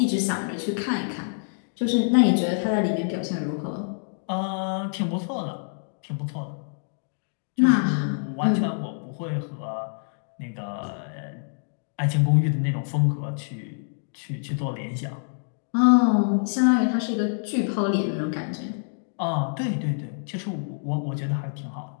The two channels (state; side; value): silent; right; digital silence